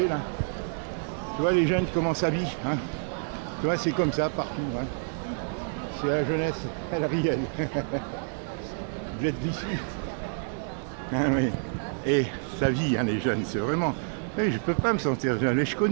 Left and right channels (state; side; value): silent; left; 59 dB below the other